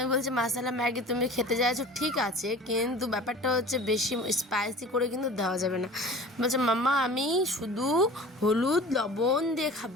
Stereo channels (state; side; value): normal; both; correlation 0.41